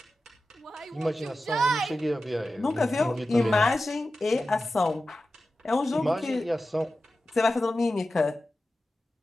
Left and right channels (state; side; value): normal; both; correlation 0.93